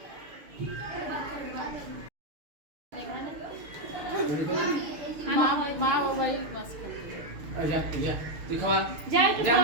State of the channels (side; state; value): left; late; 6.6 ms